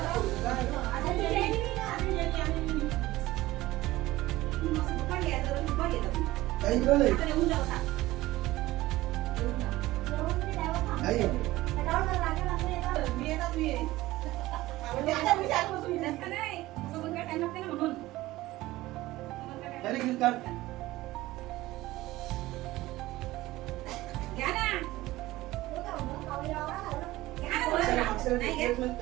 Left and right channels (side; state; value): left; quieter; 17.6 dB